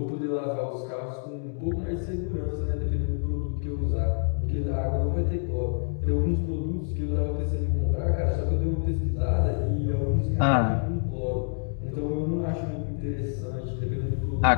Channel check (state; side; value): silent; right; digital silence